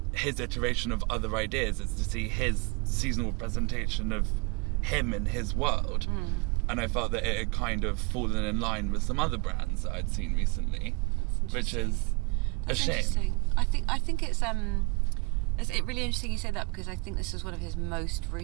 his iteration of other ideas, it's to see his seasonal presentation of him in his world. And I felt that it had kind of fallen in line with some other brands that I'd seen recently, which is a shame. I think it's really interesting you say that, because I think this was one of his most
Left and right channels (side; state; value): left; quieter; 31.2 dB